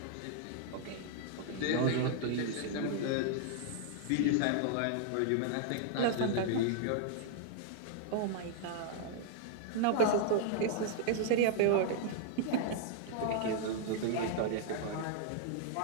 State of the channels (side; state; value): both; different; correlation -0.01